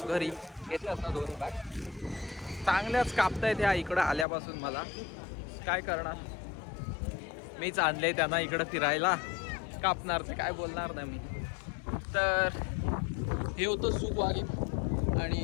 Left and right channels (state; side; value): drops out; right; at 4.2 s